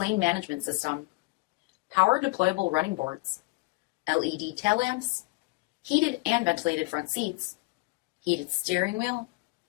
management system, power deployable running boards, LED tail lamps, heated and ventilated front seats, heated steering wheel,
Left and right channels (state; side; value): quieter; right; 24.6 dB